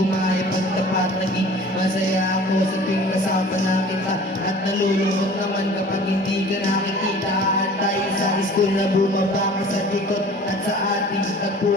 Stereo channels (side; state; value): both; normal; correlation 0.46